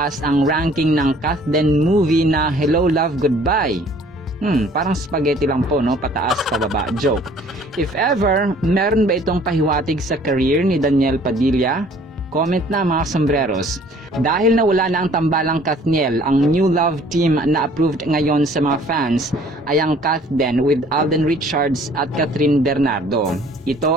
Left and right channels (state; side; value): normal; both; correlation 0.55